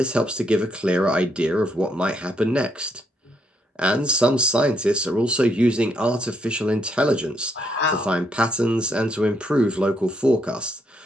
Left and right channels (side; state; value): both; normal; correlation 0.76